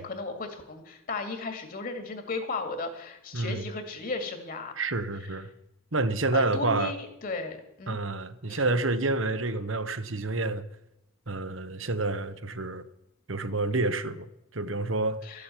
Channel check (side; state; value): both; normal; correlation 0.00